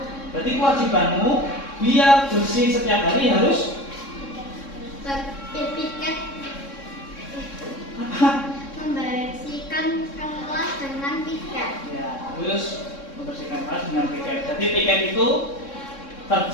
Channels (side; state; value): right; late; 3.6 ms